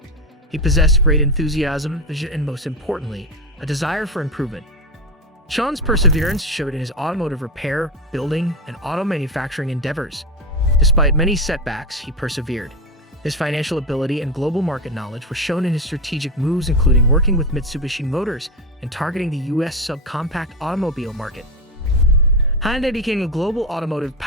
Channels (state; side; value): normal; both; correlation 0.17